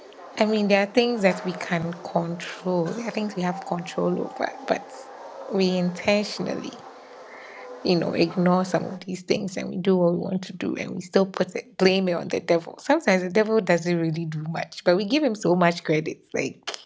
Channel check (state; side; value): identical; both; correlation 1.00